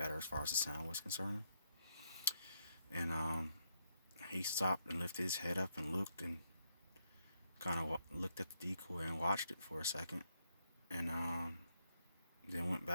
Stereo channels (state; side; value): inverted; both; correlation -0.78